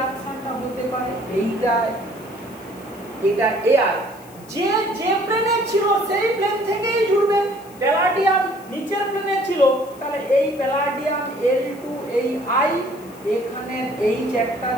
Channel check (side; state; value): left; noise; hiss, 24 dB below the sound